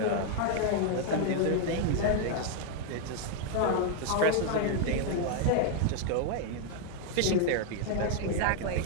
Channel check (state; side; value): different; both; correlation 0.00